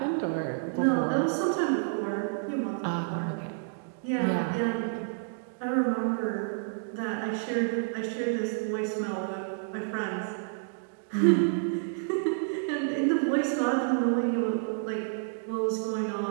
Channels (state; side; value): silent; left; digital silence